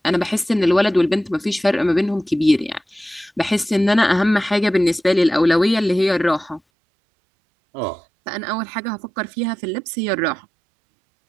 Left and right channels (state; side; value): drops out; left; at 6.6 s